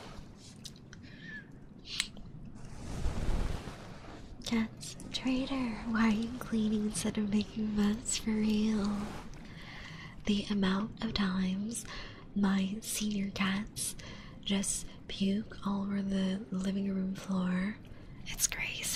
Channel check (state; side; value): identical; both; correlation 1.00